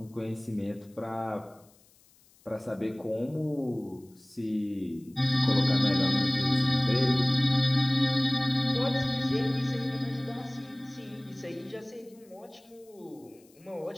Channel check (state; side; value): noise; left; hiss, 30 dB below the sound